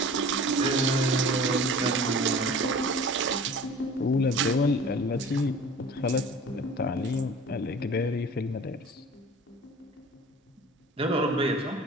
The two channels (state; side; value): normal; both; correlation 0.42